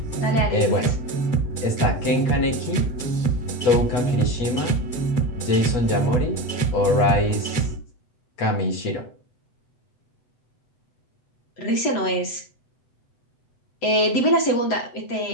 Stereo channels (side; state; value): right; late; 7.7 ms